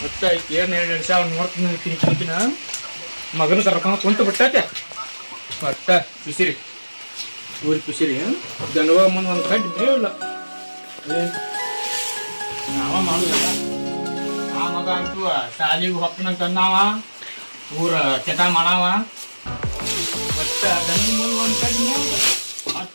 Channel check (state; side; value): inverted; both; correlation -1.00